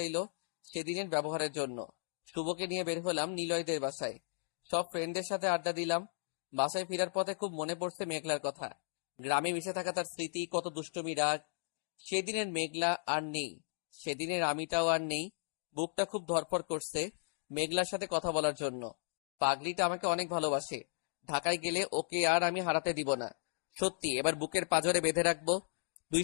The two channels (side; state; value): right; silent; digital silence